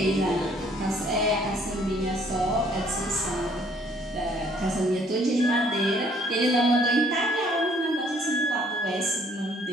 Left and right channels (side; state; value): both; normal; correlation 0.61